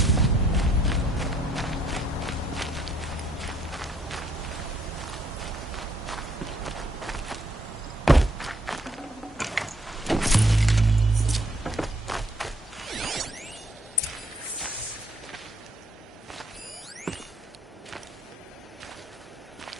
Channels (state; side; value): normal; both; correlation 0.68